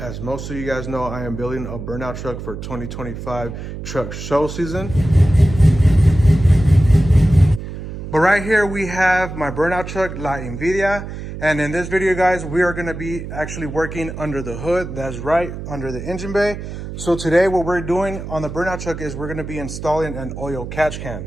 As most of you guys know, I am building a burnout truck for 2025 truck show season. But right here we have my burnout truck, La Envidia. And in this video guys, we are going to be actually working under the hood. That's right, under the engine bay. So today what we're doing on the burnout truck is we're going to be installing an oil catch can.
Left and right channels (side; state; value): right; noise; hum, 9 dB below the sound